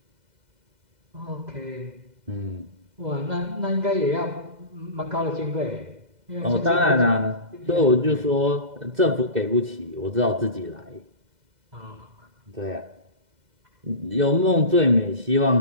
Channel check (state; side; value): late; left; 2.0 ms